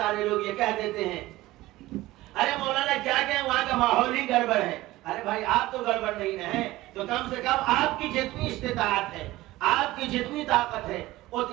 لوگ یہ کہہ دیتے ہیں ارے مولانا کیا کہیں وہاں کا ماحول ہی گڑبڑ ہے، ارے بھائی آپ تو گڑبڑ نہیں ہیں تو کم سے کم آپ کی جتنی استطاعت ہے، آپ کی جتنی طاقت ہے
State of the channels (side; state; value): left; quieter; 17.7 dB